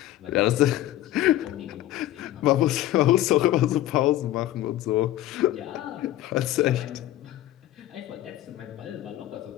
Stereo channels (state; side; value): quieter; right; 14.2 dB